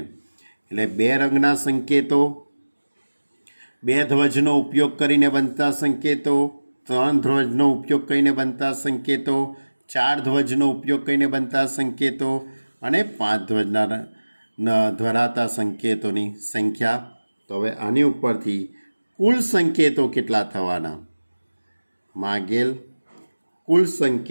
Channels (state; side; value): inverted; both; correlation -1.00